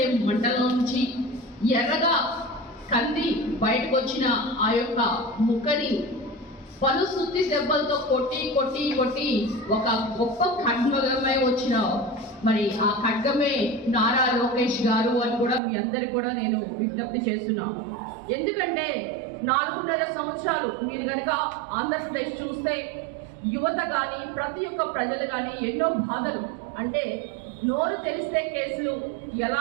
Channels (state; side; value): drops out; left; at 15.6 s